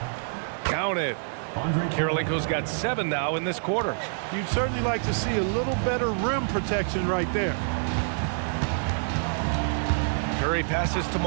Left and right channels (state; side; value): silent; left; digital silence